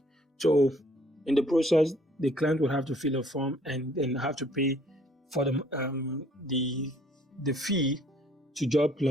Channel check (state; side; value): normal; both; correlation 0.60